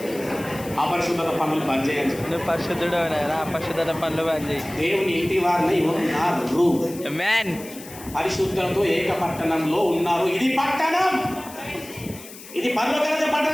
అపరిశుద్ధత పనులు బంద్ చేయని చెప్పి, నువ్వు పరిశుద్ధుడు అపరిశుద్ధత పనులు బంద్ చేయి. దేవుని ఇంటి వారిని ఉన్నారు. పరిశుద్ధులతో ఏక పట్టణంలో ఉన్నారు. ఇది పట్టణం, ఇది పరలోక రాజ్య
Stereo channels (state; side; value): noise; left; hiss, 16 dB below the sound